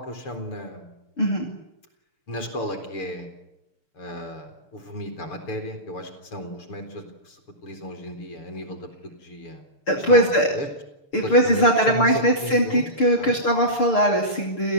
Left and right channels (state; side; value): late; right; 6.6 ms